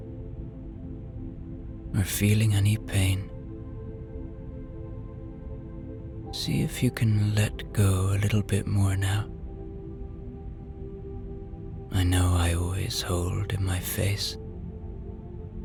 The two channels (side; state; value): both; identical; correlation 1.00